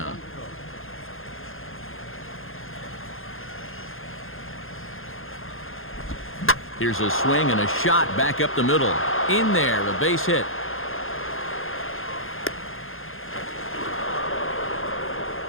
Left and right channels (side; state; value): right; late; 0.60 ms